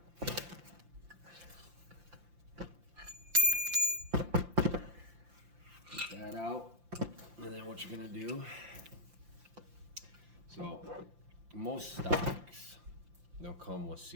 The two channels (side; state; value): left; late; 5.8 ms